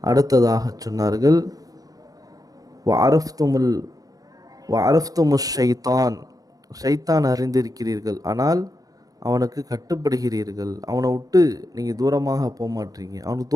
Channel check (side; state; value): left; late; 0.18 ms